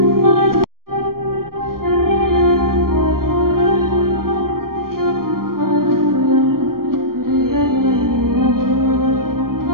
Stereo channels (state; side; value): late; left; 0.93 ms